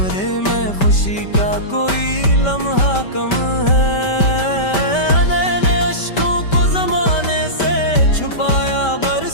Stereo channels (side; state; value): right; late; 5.1 ms